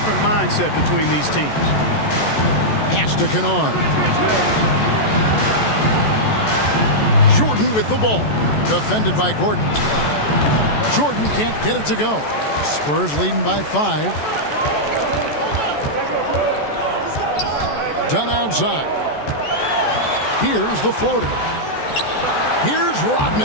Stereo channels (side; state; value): right; late; 14 ms